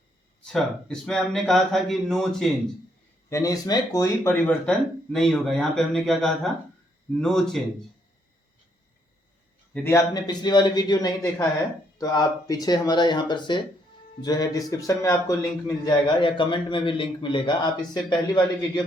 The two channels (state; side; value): normal; both; correlation 0.72